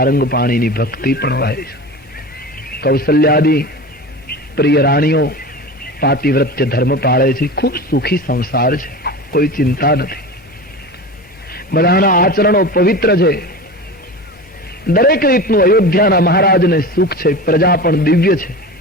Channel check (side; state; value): both; normal; correlation 0.31